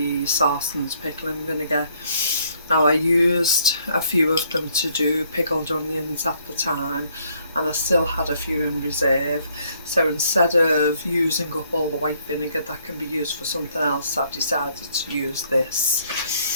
Sarson's pickle and vinegar. Now I used a few of them to do pickled onions at the time, and I still had a few in reserve. So instead of using up all the white vinegar that can be used for something else, I've decided to use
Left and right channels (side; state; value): both; inverted; correlation -0.67